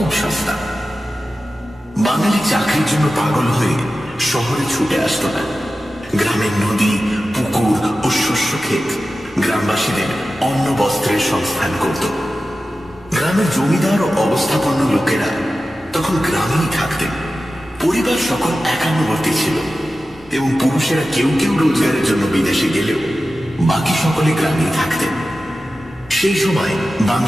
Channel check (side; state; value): both; normal; correlation 0.94